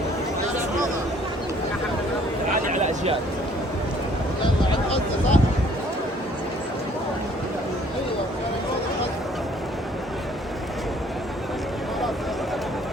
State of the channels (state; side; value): normal; both; correlation 0.59